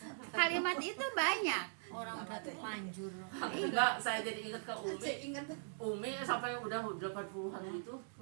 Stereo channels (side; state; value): left; silent; digital silence